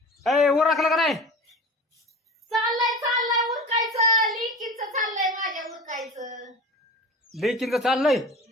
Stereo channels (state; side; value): normal; both; correlation 0.34